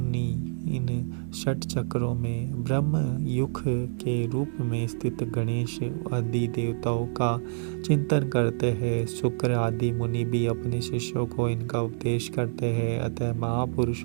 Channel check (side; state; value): left; silent; 58 dB below the other